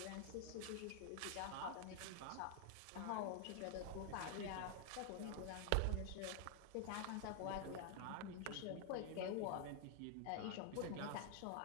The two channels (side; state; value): both; different; correlation 0.00